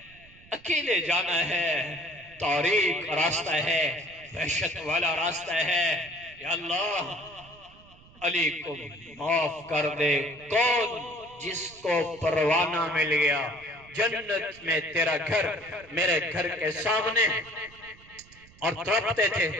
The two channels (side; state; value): right; noise; rumble, 24 dB below the sound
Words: اکیلے جانا ہے، تاریک راستہ ہے، وحشت والا راستہ ہے، یا اللہ علی کو معاف کر دے۔ کون؟ جس کو پروانہ مل گیا جنت میں تیرا گھر میرے گھر کے سامنے، اور تڑپتے تھے